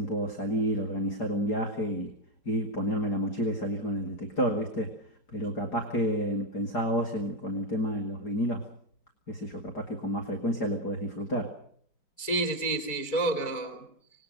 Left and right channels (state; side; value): late; right; 4.6 ms